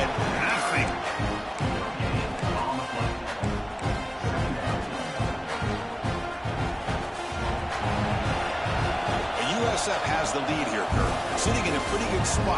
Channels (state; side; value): identical; both; correlation 1.00